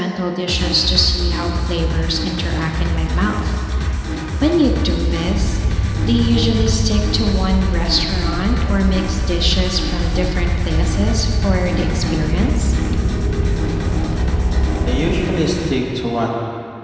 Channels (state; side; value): identical; both; correlation 1.00